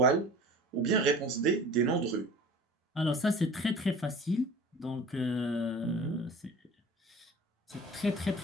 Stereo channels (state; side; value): normal; both; correlation 0.42